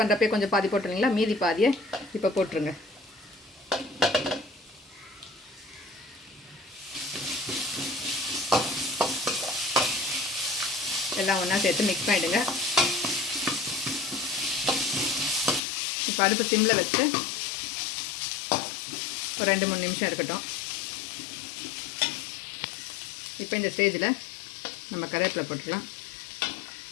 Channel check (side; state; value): right; drops out; at 15.6 s